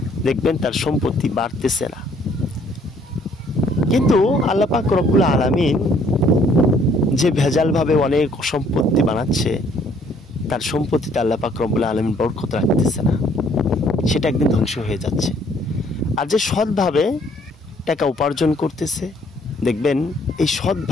দেখবেন তার সম্পত্তি বাড়তেছে না। কিন্তু আল্লাহ পাক রব্বুল আলামিন যে ভেজালভাবে অনেক সম্পত্তি বানাচ্ছে, তার সম্পত্তিতে আল্লাহ পাক রব্বুল আলামিন বরকত রাখতেছে না, সেটা একদিন ধ্বংস হয়ে যাচ্ছে। আর যে সৎভাবে টাকা উপার্জন করতেছে দেখবেন এই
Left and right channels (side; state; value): both; normal; correlation 0.62